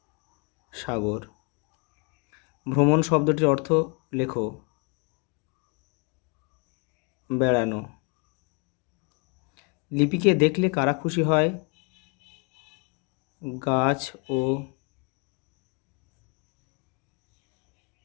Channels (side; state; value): right; quieter; 34.6 dB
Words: ভ্রমণ শব্দটির অর্থ লেখো। বেড়ানো। লিপিকে দেখলে কারা খুশি হয়? গাছ ও